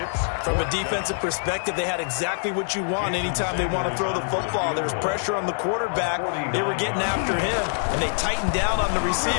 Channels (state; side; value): silent; right; 62 dB below the other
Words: From a defensive perspective, they had exactly what you want anytime they want to throw the football. There was pressure on the quarterback. They were getting after him, and they tightened down on the